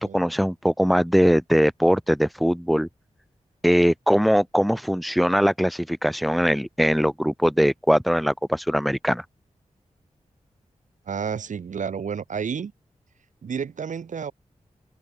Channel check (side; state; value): both; normal; correlation 0.98